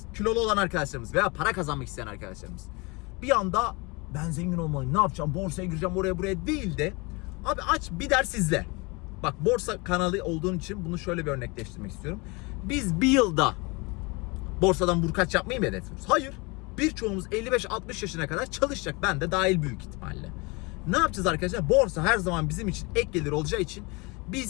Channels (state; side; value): quieter; right; 27.3 dB